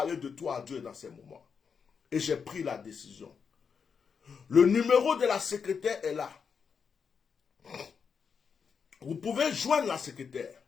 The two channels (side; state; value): right; quieter; 6.2 dB